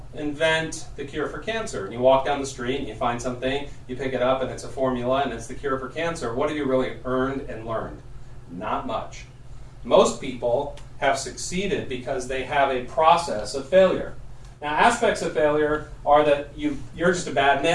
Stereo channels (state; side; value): identical; both; correlation 1.00